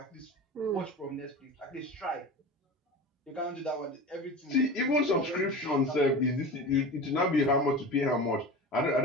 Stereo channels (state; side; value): normal; both; correlation 0.32